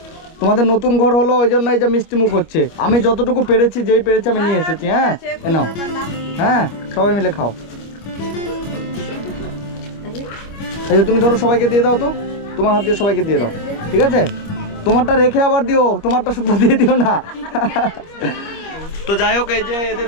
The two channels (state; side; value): late; right; 25 ms